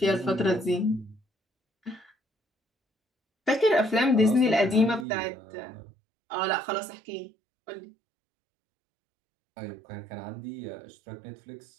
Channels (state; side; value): drops out; left; at 5.1 s